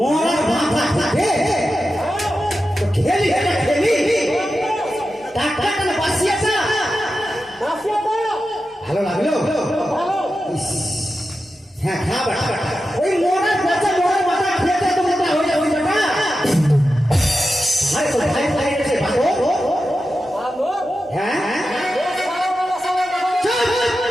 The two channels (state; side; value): normal; both; correlation 0.91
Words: ক্যানাডা খেলি ভালো লাগলো হ্যাঁ খাবার ওই মোড়ার বাচ্চা মোড়ার মাথা খেতে তো মোটা হয়ে যাবে হ্যাঁ